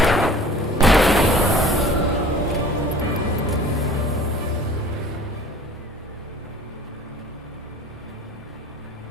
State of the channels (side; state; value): both; normal; correlation 0.46